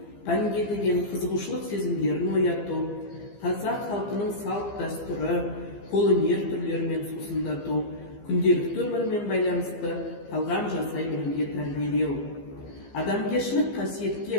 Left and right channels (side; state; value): right; late; 15 ms